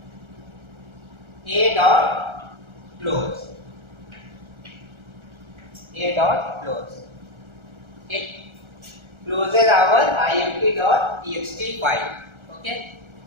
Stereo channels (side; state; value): left; late; 1.4 ms